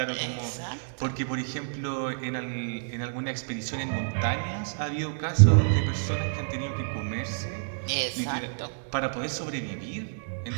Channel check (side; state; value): left; silent; digital silence